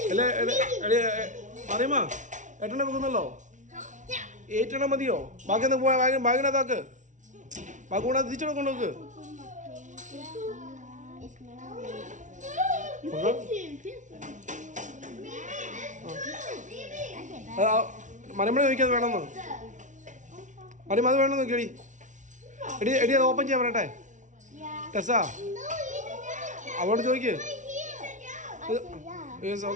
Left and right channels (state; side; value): late; left; 0.36 ms